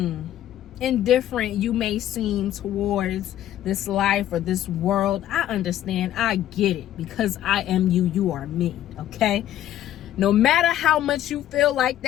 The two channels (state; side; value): quieter; right; 12.3 dB